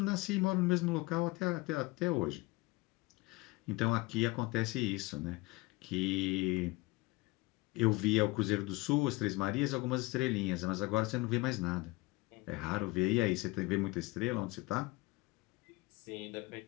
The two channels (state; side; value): quieter; right; 22.6 dB